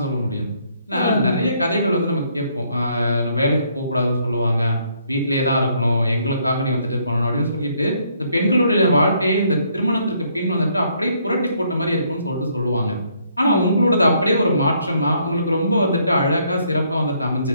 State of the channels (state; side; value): inverted; both; correlation -0.69